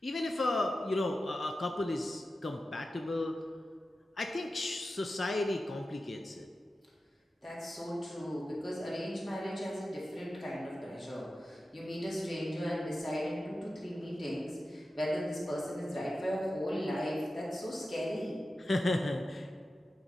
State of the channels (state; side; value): normal; both; correlation 0.93